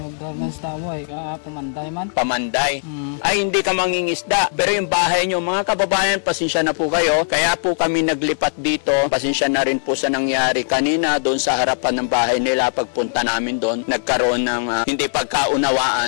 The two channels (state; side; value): silent; right; digital silence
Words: garments tao eh. Pamanday man. Pamanday. Ay hindi ka mangingisda. Pero yung bahay nyo, mga kababayan, pasensya na po kayo. Kaya po kami naglipat dito. Pasensya na rin po sa nangyari kanina doon sa harapan ng bahay nila. Pagpunta namin doon, nagkaroon ng hindi